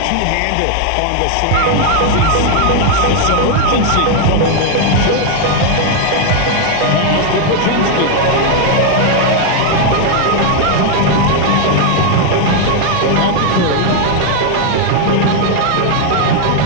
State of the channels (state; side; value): different; both; correlation 0.00